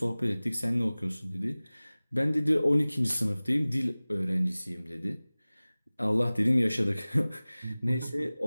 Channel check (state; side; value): inverted; both; correlation -0.99